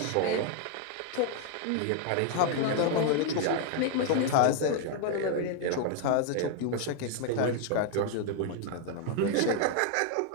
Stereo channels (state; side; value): different; both; correlation 0.00